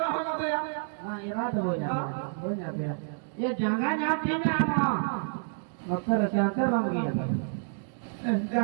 रहा दे हां इरा तो हो जाते हैं ये जगह जाते ना ना मकर चाहते बन गया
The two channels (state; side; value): silent; left; digital silence